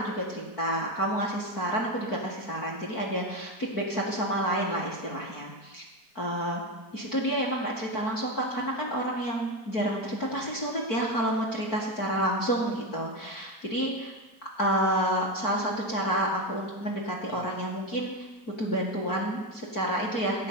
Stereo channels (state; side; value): late; right; 4.5 ms